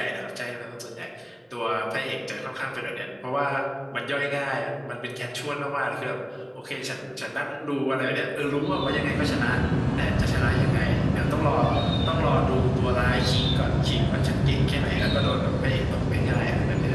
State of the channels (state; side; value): identical; both; correlation 1.00